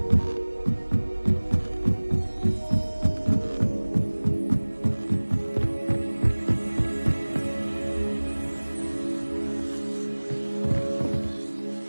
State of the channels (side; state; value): both; inverted; correlation -1.00